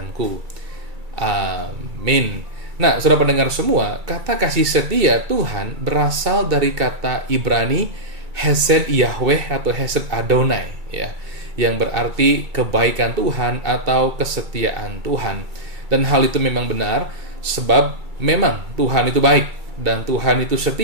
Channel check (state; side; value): late; left; 2.3 ms